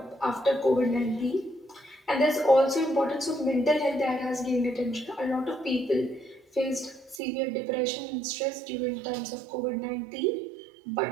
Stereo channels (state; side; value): drops out; left; at 7.2 s